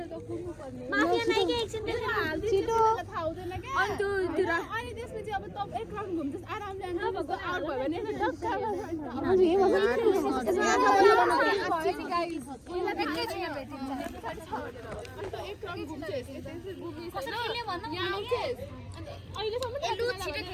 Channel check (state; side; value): identical; both; correlation 1.00